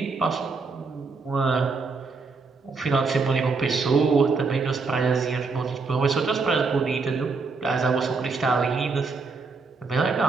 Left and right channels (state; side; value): quieter; left; 4.4 dB